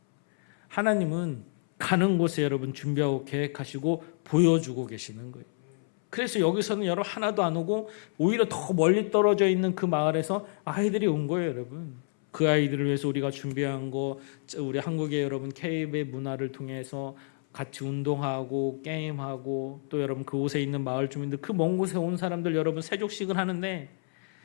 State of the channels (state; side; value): silent; right; 59 dB below the other